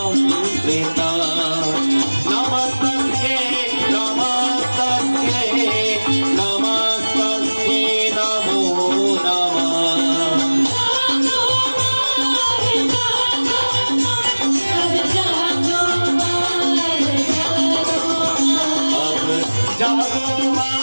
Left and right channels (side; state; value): both; inverted; correlation -1.00